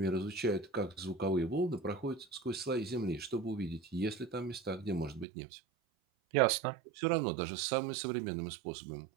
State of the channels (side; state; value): left; drops out; at 5.2 s